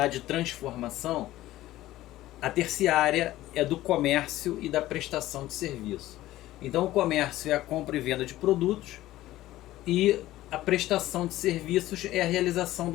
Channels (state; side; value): quieter; right; 15.6 dB